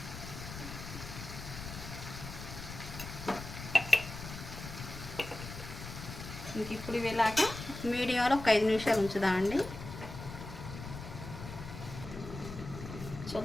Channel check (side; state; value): left; noise; rumble, 10 dB below the sound